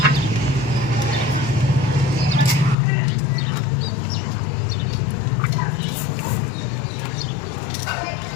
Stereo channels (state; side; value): drops out; right; at 2.8 s